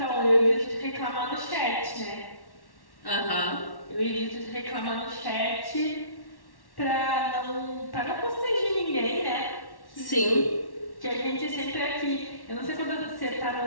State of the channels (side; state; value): right; late; 1.1 ms